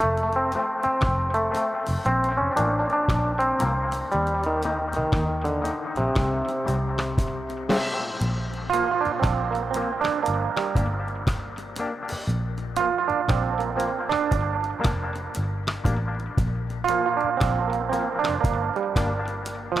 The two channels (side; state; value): both; normal; correlation 0.91